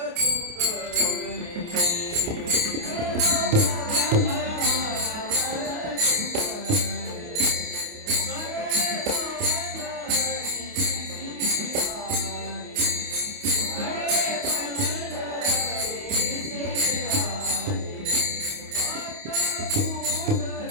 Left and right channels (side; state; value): left; late; 28 ms